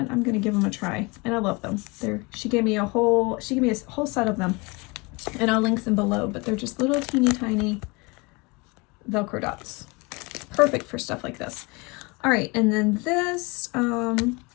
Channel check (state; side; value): quieter; right; 27.1 dB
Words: I'm going to give them a try. And I love them. She gave me a whole set of them, and I'll link them below, but they're just little teeny tiny Velcro dots. Perfect for stuff like this. All right. And then this,